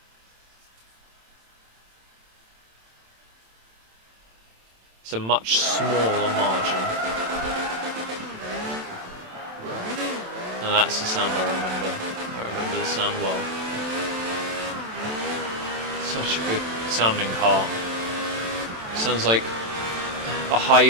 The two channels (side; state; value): left; late; 27 ms